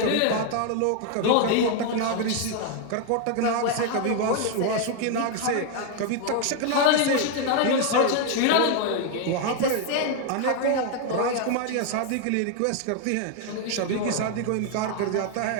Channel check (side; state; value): both; different; correlation 0.00